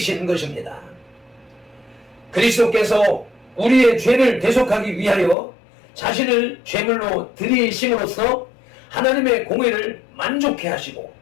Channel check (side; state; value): right; drops out; at 5.4 s